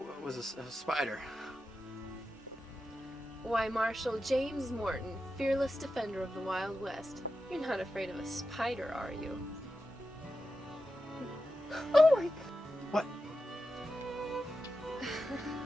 was a spider. Why, Marshal James Morton, fearless defender of the Wild West. You're not afraid of a spider, are you? Oh my... What?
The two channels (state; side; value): normal; both; correlation 0.90